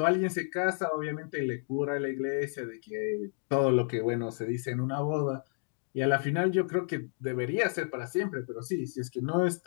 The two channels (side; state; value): right; silent; digital silence